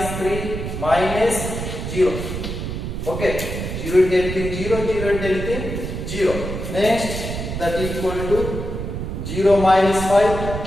3 minus 0. Okay, 0 into anything 0, 0 into anything 0. Next, that equal to 0 minus 5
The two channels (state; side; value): noise; right; rumble, 5 dB below the sound